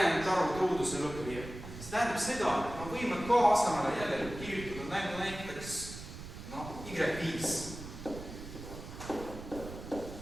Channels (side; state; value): right; noise; rumble, 11 dB below the sound